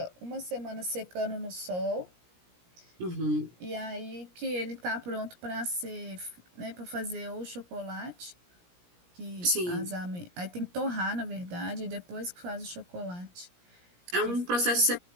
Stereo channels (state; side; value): late; left; 17 ms